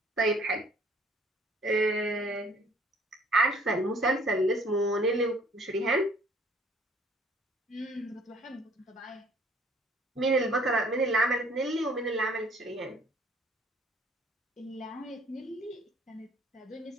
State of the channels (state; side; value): normal; both; correlation 0.58